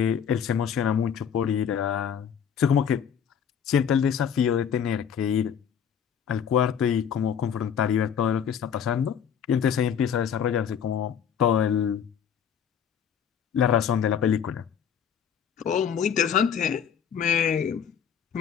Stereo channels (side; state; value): right; quieter; 8.1 dB